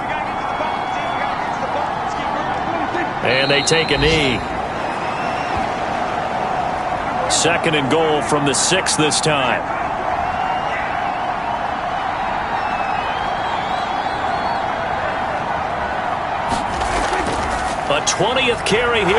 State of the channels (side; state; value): both; identical; correlation 1.00